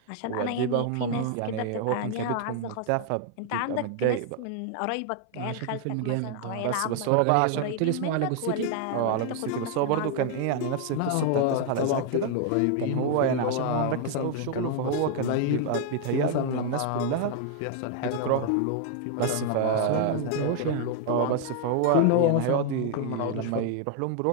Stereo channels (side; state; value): both; different; correlation 0.00